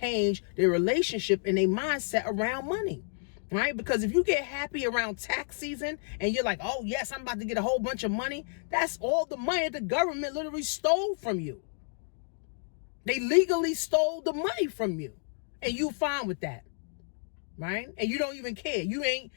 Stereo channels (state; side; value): silent; right; digital silence